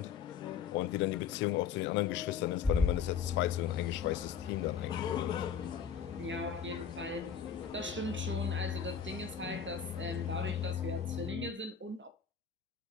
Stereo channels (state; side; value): quieter; right; 7.3 dB